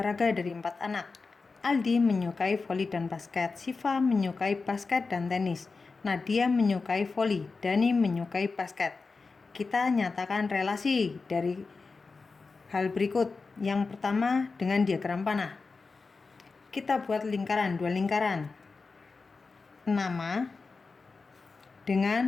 dari 4 anak. Aldi menyukai voli dan basket, Siva menyukai basket dan tenis, Nadia menyukai voli, Dani menyukai basket. Kita nyatakan relasi dari hal berikut. Yang pertama, dengan diagram panah. Kita buat lingkaran, 2 lingkaran. Nama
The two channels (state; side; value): quieter; right; 4.3 dB